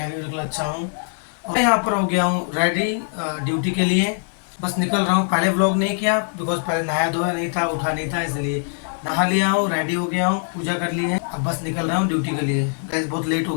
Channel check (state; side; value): silent; right; 64 dB below the other